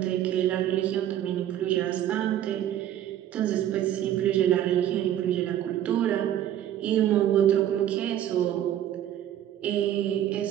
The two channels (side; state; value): left; quieter; 11.4 dB